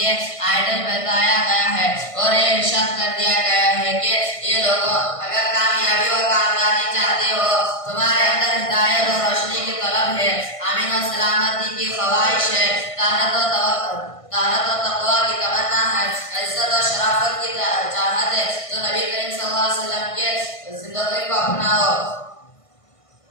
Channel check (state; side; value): late; right; 1.5 ms